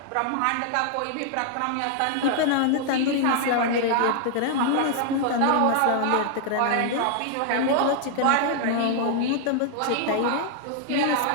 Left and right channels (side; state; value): both; different; correlation 0.00